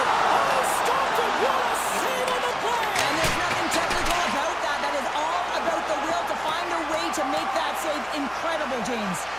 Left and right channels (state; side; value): noise; left; hum, 24 dB below the sound